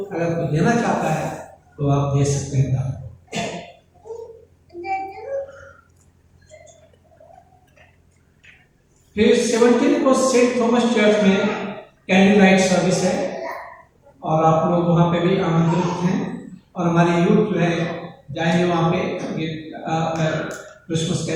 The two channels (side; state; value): both; identical; correlation 1.00